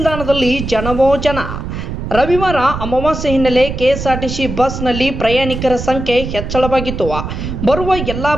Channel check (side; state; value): right; noise; rumble, 6 dB below the sound